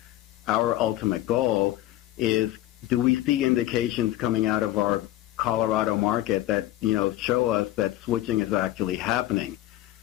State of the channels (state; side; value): quieter; right; 15.1 dB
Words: our ultimate goal, is do we see indications coming out of our Colorado market that, show us that switching is actually happening?